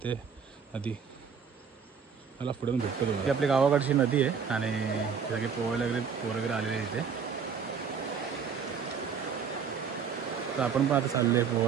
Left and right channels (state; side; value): quieter; left; 6.5 dB